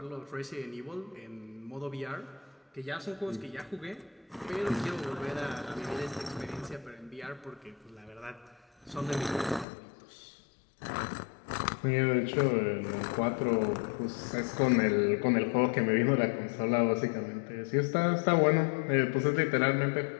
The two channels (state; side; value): drops out; right; at 9.7 s